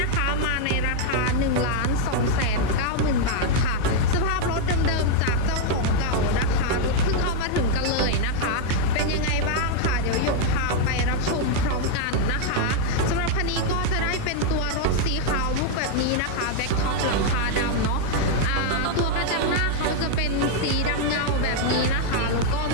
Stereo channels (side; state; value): both; different; correlation 0.00